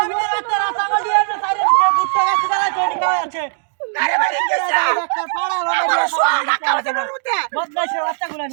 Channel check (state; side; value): silent; left; digital silence